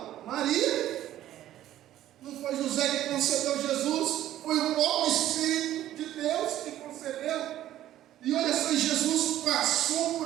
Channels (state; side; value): quieter; left; 13.0 dB